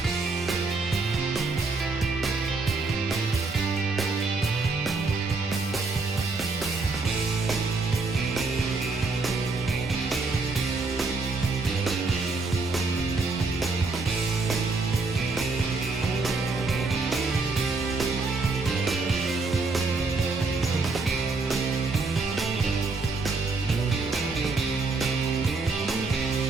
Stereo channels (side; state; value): left; quieter; 3.8 dB